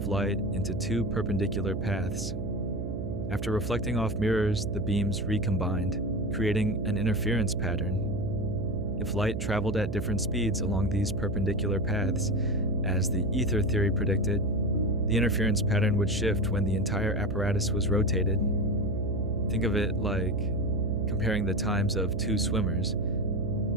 light into two perpendicular paths. After reflecting off mirrors, the beams recombined, creating an interference pattern. If light traveled at different speeds along these perpendicular paths, as the ether theory predicted, the interference pattern would shift when the entire apparatus was rotated. Think of it like comparing the times of two swimmers,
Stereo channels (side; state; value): right; noise; hum, 4 dB below the sound